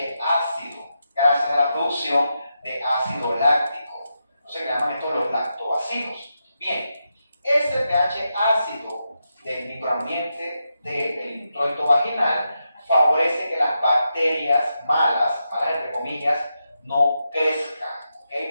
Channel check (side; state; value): both; inverted; correlation -0.86